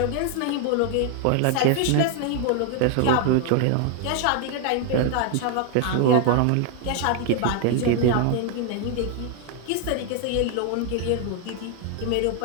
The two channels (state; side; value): different; both; correlation 0.01